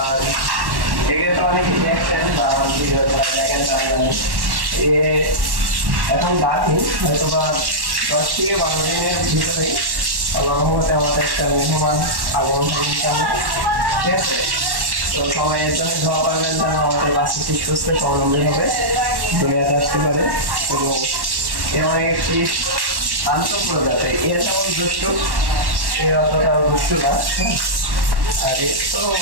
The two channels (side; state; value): left; late; 1.1 ms